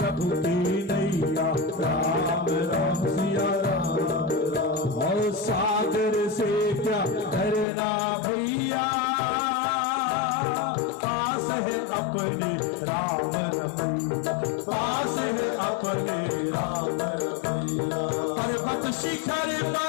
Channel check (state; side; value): drops out; right; at 7.7 s